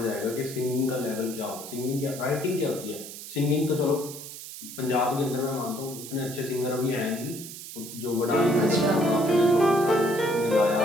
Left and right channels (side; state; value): right; noise; hiss, 12 dB below the sound